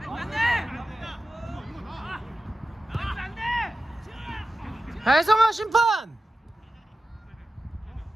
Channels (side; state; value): both; normal; correlation 0.93